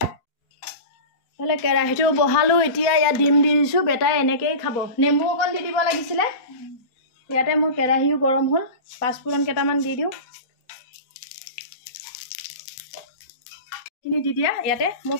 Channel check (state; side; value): late; right; 4.2 ms